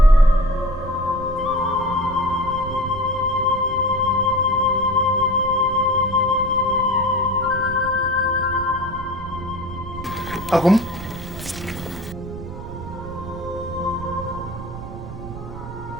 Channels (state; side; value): noise; right; rumble, 10 dB below the sound